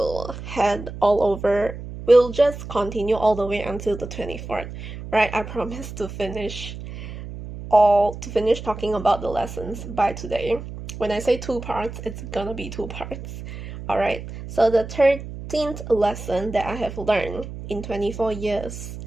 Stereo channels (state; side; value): noise; right; hum, 10 dB below the sound